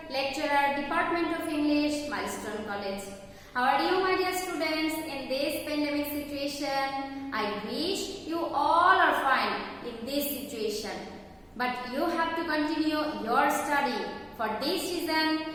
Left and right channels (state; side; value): identical; both; correlation 1.00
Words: lecturer, Department of English, Milestone College. How are you, my dear students? In this pandemic situation, I wish you all are fine in this situation. But you have to continue your study. For this